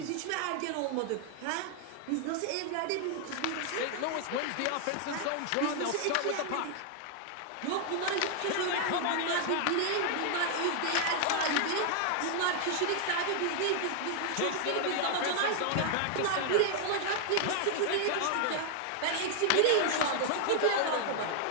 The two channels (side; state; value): both; different; correlation 0.00